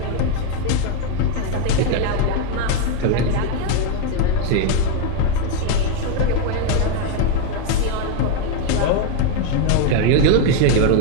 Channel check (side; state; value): both; different; correlation 0.01